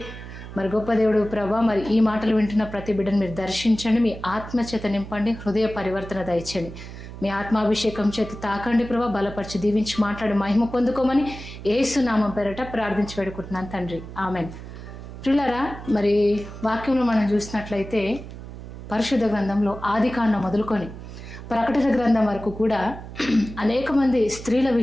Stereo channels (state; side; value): noise; right; hum, 12 dB below the sound